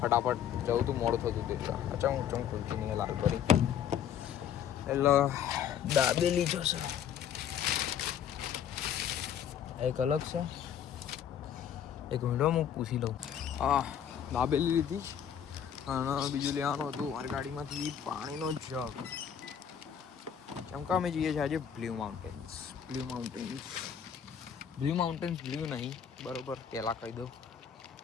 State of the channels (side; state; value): right; quieter; 8.9 dB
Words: જવું હતું, મોડું થતું હતું. અચ્છા, હું ખુલતી નહીં લાલ કરી. એટલે દાબેલી જોશે એક અલગ છે. એક મિનિટ હું પૂછી લઉં. હા, દાબેલી લીધી. અને બીજું લેવાનું હતું મારી ગાડીમાંથી પાણીનો જગ. કેમ કે અમે જઈએ છીએ આજે બ્લુ માઉન્ટેન્સ. બ્લુ નહીં, બરોબર, પહેલાં કહી દઉં.